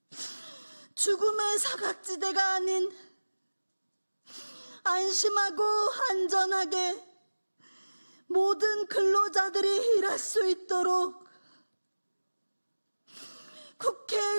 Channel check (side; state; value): both; inverted; correlation -1.00